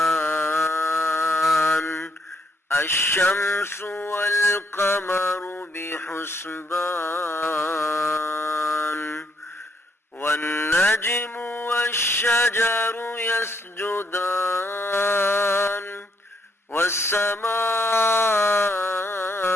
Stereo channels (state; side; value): normal; both; correlation 0.73